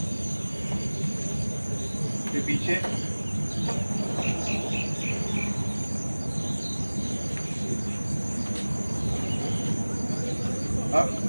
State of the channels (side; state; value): both; inverted; correlation -1.00